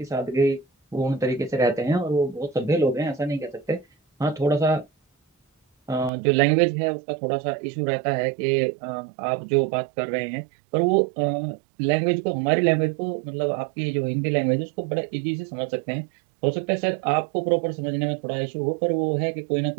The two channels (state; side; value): drops out; left; at 6.1 s